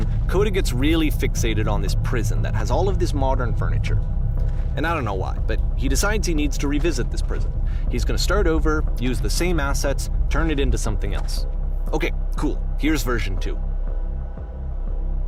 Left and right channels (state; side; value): identical; both; correlation 1.00